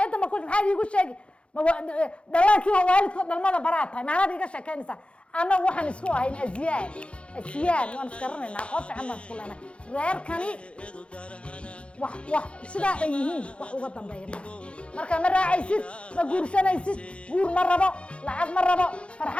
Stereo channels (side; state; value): right; late; 0.060 ms